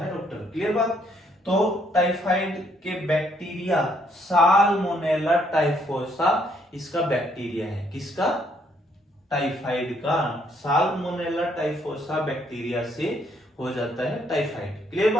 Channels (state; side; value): normal; both; correlation 0.69